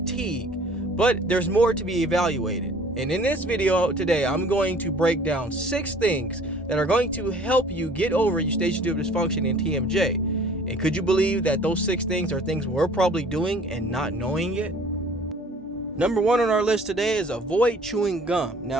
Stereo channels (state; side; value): normal; both; correlation 0.52